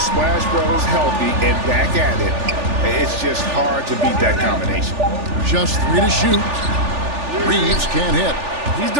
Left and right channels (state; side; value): late; left; 3.4 ms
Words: Brothers healthy and back at it, it's just hard to beat that combination. Just 3 to shoot. Reeves can't hit. He's